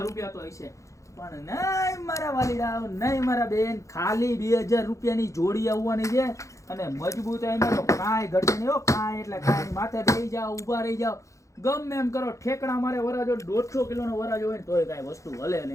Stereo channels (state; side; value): late; right; 0.15 ms